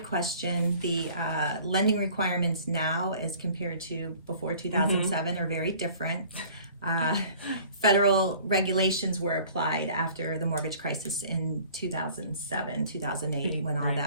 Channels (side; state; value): both; inverted; correlation -0.50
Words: question. The lending requirements now as compared to before 2007 are very different. Federal regulations were applied after the mortgage crisis in 2007, 2008, when all Right.